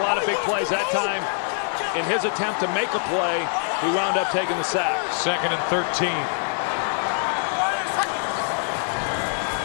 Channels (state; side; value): silent; right; 63 dB below the other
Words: of big plays. That time, in his attempt to make a play, he wound up taking the sack. 2nd and 13.